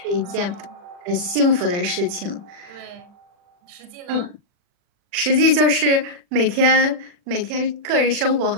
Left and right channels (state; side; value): late; left; 40 ms